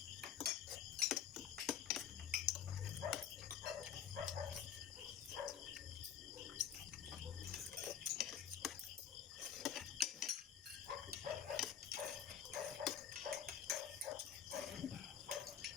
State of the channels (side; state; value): right; quieter; 8.6 dB